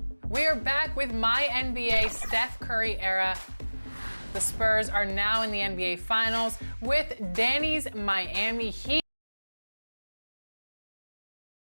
We are back with my NBA Steph Curry era. The Spurs are now in the NBA Finals with Danny's Miami Heat.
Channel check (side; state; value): both; inverted; correlation -1.00